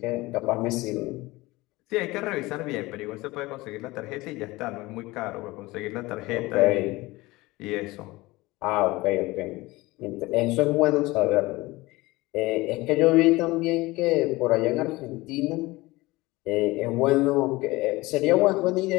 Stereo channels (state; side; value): quieter; right; 20.8 dB